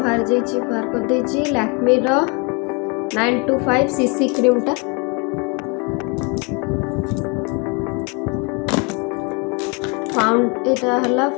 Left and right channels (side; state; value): right; quieter; 32.0 dB